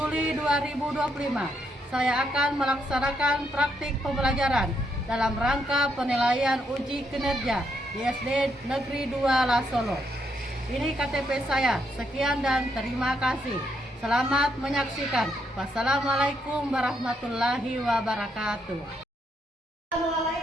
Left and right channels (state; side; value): normal; both; correlation 0.77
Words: 2025, saya akan melaksanakan praktik pembelajaran dalam rangka penilaian uji kinerja di SD Negeri 2 Lasolo. Ini KTP saya. Sekian dan terima kasih. Selamat menyaksikan. Wassalamualaikum warahmatullahi wabarakatuh.